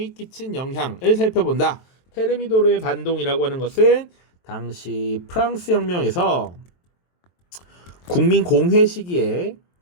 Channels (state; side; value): late; right; 23 ms